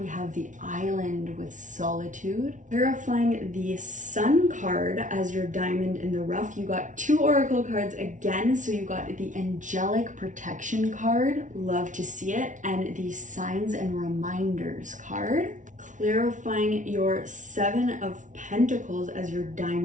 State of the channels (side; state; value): left; late; 0.37 ms